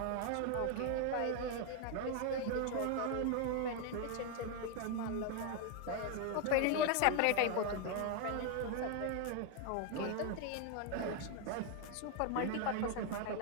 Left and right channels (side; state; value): both; different; correlation 0.01